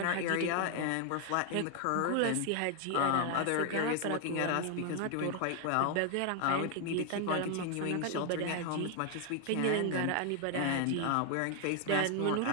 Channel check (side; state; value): both; different; correlation 0.00